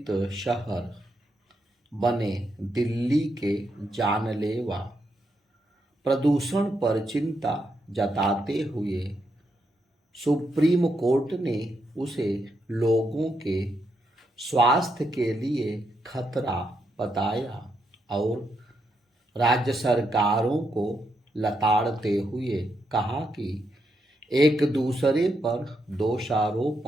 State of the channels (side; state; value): both; normal; correlation 0.81